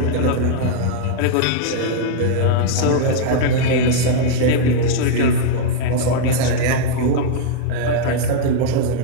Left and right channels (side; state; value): both; different; correlation 0.00